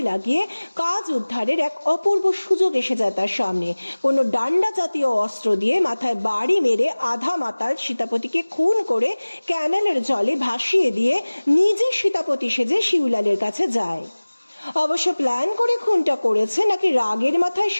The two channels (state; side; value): inverted; both; correlation -1.00